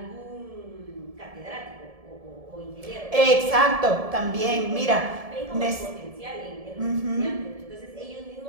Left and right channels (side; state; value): left; late; 1.7 ms